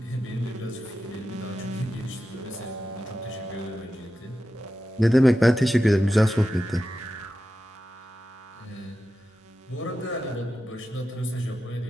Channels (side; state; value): both; normal; correlation 0.91